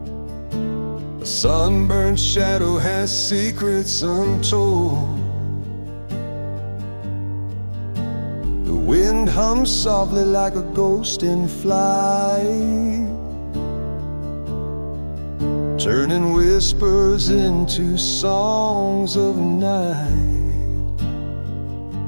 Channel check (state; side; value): inverted; both; correlation -1.00